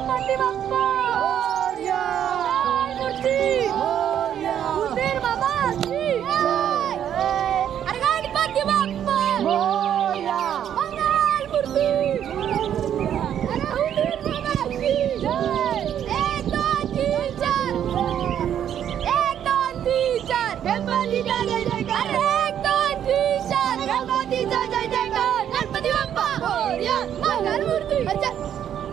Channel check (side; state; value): left; quieter; 9.8 dB